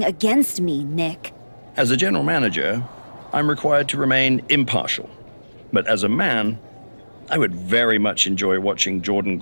against me, Nick. As a general manager, I'm required to remain impartial. But as a man, I would very much enjoy watching Jordynne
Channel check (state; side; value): inverted; both; correlation -1.00